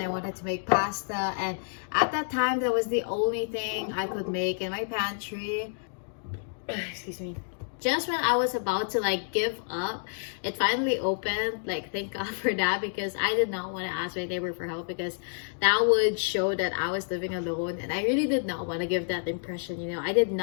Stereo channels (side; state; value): right; silent; digital silence